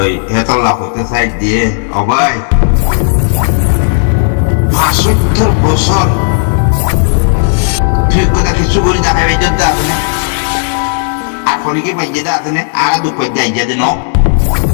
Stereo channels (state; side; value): silent; right; 69 dB below the other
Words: হেতলা হইতে সাইড দিয়ে অবাই ৭৫ বছর তুই কথা কিছু করে দেখাবে যদি আছে না আর ফোনে কি পাইজে আছে না আর দুঃখ যাই যে ন